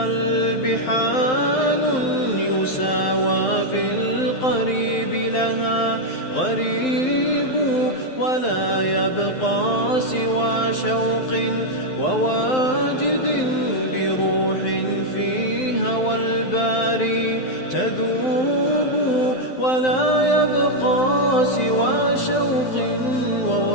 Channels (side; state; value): right; late; 12 ms